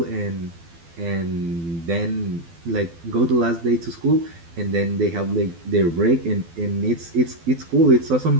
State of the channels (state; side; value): late; left; 12 ms